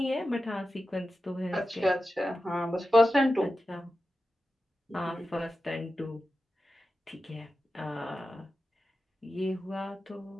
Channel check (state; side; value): normal; both; correlation 0.92